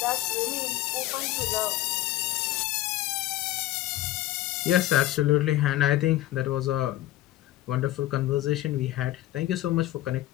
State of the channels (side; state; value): right; quieter; 15.1 dB